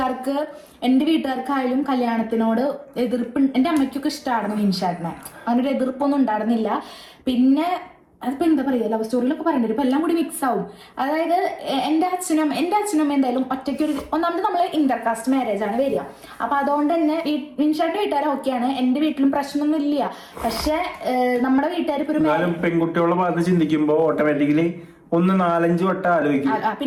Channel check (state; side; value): identical; both; correlation 1.00